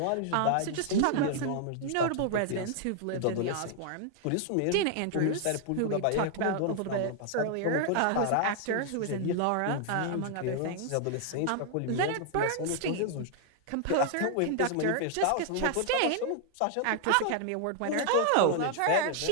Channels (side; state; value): both; different; correlation 0.00